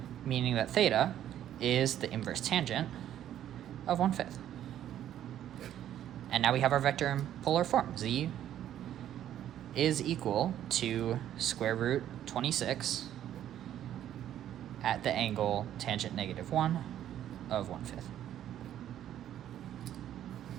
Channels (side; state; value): left; quieter; 11.2 dB